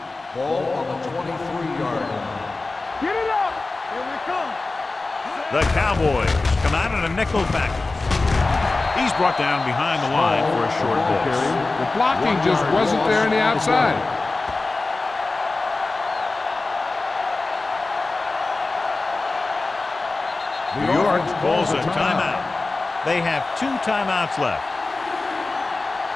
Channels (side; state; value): right; quieter; 3.4 dB